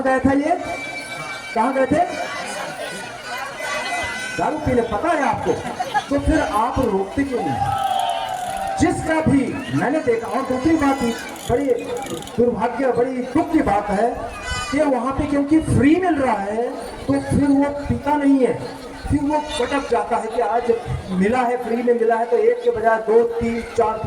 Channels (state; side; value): identical; both; correlation 1.00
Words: गया था ये? कहाँ गए थे? दारू पीने, पता है आपको? तो फिर आप रोकते क्यों नहीं? जिसका भी मैंने देखा, और दूसरी बात बड़ी दुर्भाग्य, बड़ी दुख की बात है कि वहां पे क्योंकि फ्री मिल रहा है तो फिर वो पीता नहीं है, फिर वो भटक जाता है कि आज मिला है, फ्री में मिला है तो एक के बजाय 2, 3, 4